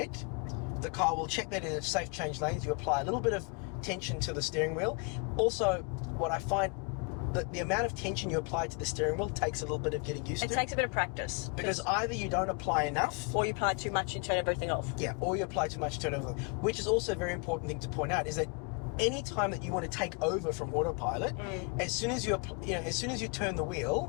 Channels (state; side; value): quieter; right; 34.8 dB